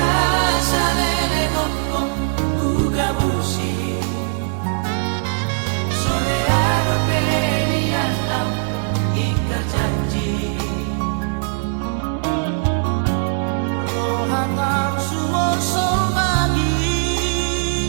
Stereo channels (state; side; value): silent; left; digital silence